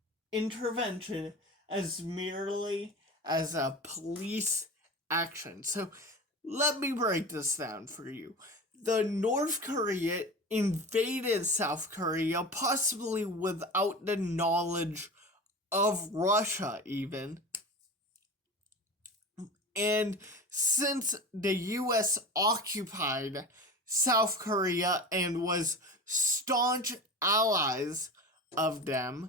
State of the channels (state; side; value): normal; both; correlation 0.31